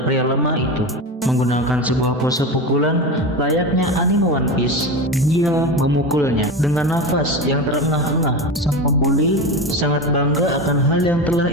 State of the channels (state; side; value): normal; both; correlation 0.23